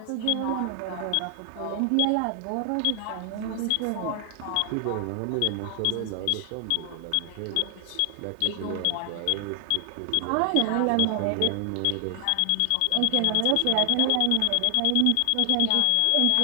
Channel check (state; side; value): different; both; correlation 0.00